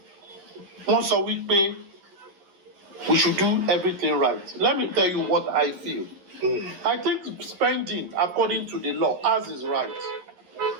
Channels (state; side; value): late; left; 11 ms